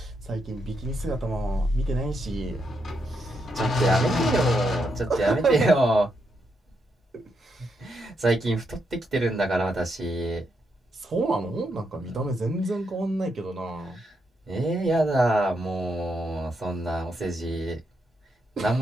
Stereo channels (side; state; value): both; normal; correlation 0.81